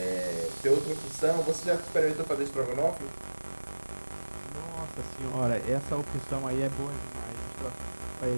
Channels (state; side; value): inverted; both; correlation -1.00